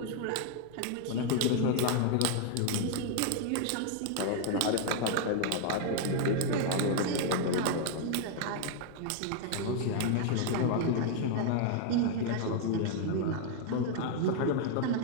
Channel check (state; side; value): different; both; correlation 0.00